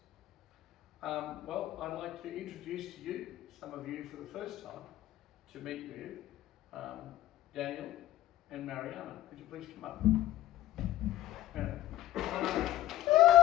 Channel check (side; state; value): right; quieter; 14.0 dB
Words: Well, I'd like to introduce to you, some of you for the first time, to meet with Daniel and Mariana. Could you please come up?